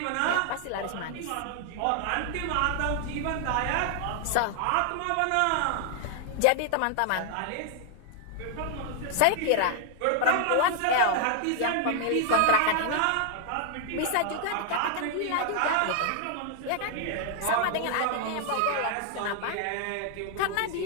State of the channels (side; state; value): both; different; correlation 0.00